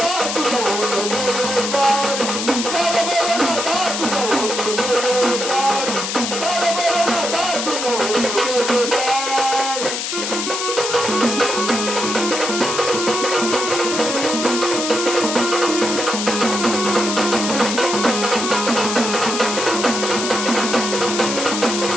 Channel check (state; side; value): noise; left; hiss, 3 dB below the sound